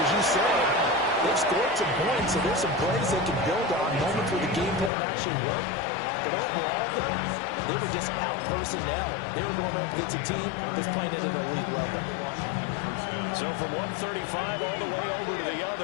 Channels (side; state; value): right; drops out; at 4.9 s